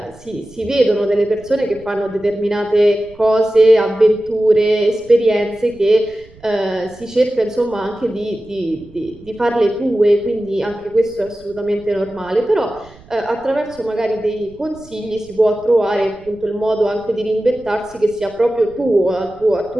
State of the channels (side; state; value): right; noise; rumble, 24 dB below the sound